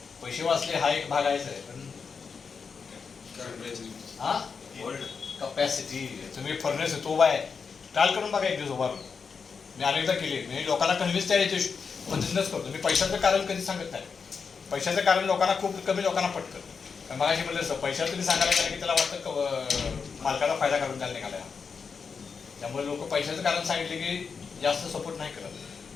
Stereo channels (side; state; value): right; quieter; 5.6 dB